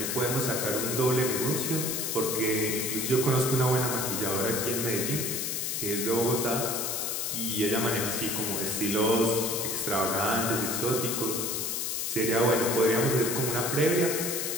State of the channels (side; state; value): left; noise; hiss, 1 dB below the sound